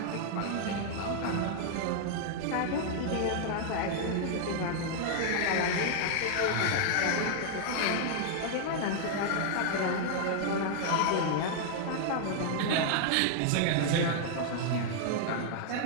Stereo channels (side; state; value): both; different; correlation 0.00